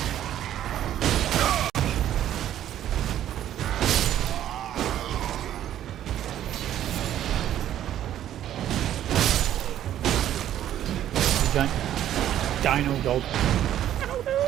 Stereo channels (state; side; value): quieter; left; 11.6 dB